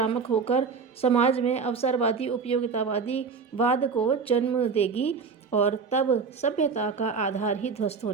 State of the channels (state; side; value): quieter; left; 5.4 dB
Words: होकर समाज में अवसरवादी, उपयोगितावादी वाद को जन्म देगी और तब सभ्यता का आधार ही ध्वस्त